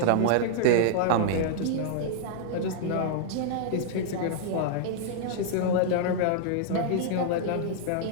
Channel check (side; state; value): both; different; correlation -0.01